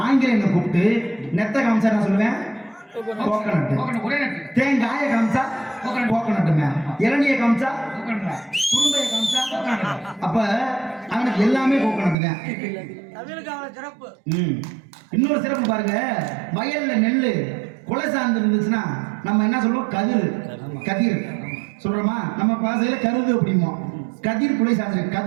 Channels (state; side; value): drops out; left; at 12.2 s